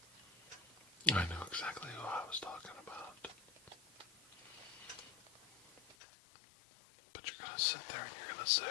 I knew exactly who I was talking about. But you're going to sit there and you're going to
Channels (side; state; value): right; drops out; at 6.0 s